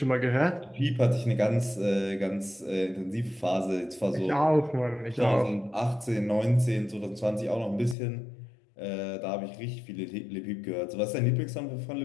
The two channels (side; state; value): right; drops out; at 8.0 s